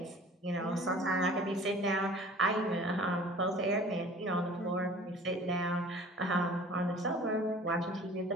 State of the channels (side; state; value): both; normal; correlation 0.47